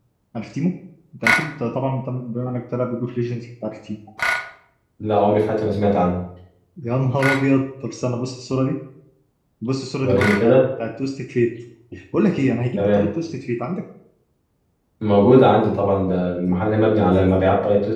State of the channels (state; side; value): identical; both; correlation 1.00